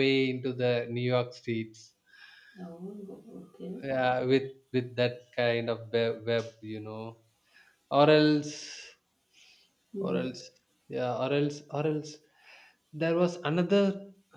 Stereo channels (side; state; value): both; identical; correlation 1.00